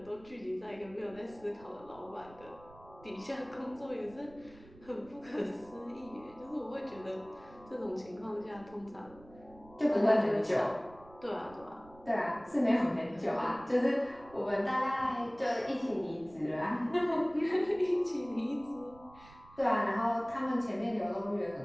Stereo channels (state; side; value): noise; right; rumble, 23 dB below the sound